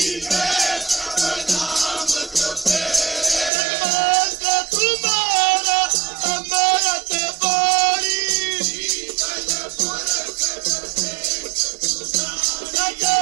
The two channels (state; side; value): drops out; left; at 3.5 s